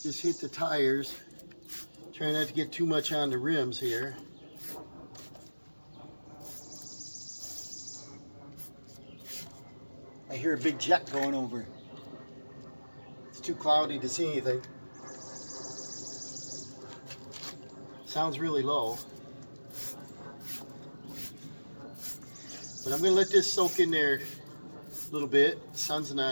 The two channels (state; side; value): inverted; both; correlation -1.00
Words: just hit the tires. Try not to get too much on the rims here. I hear a big jet going over. It's too cloudy to see anything. Sounds really low. But I'm going to let this soak in there a little bit. The sun's